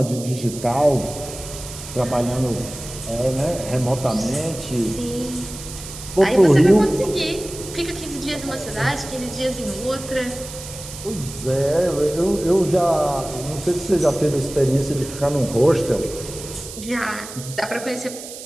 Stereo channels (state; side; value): noise; right; hiss, 12 dB below the sound